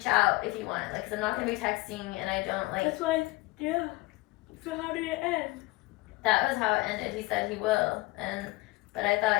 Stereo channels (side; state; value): right; quieter; 21.6 dB